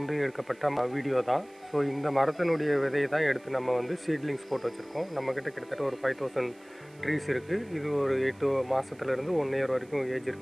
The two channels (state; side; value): noise; right; hiss, 29 dB below the sound